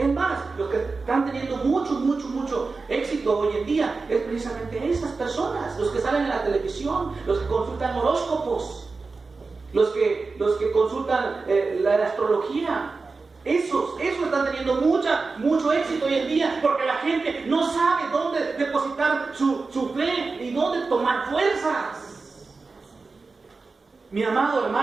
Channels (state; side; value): quieter; left; 4.1 dB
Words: más, los que están teniendo mucho éxito hoy en día es precisamente esas personas, los que salen en la televisión, los que consultan horóscopos, los que consultan la astrología. Esos están teniendo mucho éxito hoy en día, porque la gente no sabe dónde depositar su fe y dónde tomar fuerzas. Mi amado